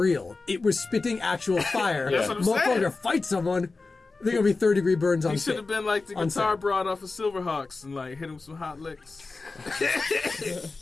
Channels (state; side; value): quieter; right; 3.8 dB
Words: It was spitting actual fire. That's what I'm Motherfucker, saying. Fight someone. They're gonna be 3rd-degree burns on He set. should have been like the guitar broad off of Silverhawks and hit him with some hot licks.